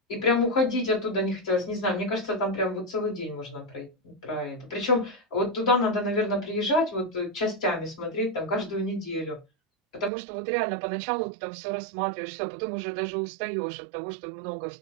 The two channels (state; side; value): drops out; left; at 10.1 s